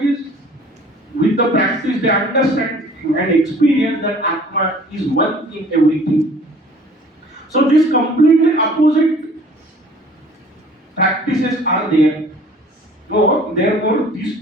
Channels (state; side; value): normal; both; correlation 0.51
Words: with the practice, they understand and experience that Atma is one in everything. So these completely opposite practices are there. So therefore these